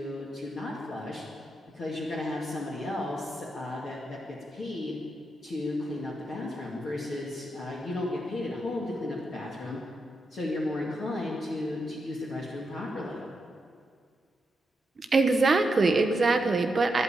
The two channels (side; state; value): both; normal; correlation 0.84